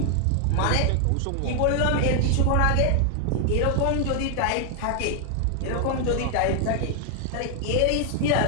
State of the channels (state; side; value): different; both; correlation 0.00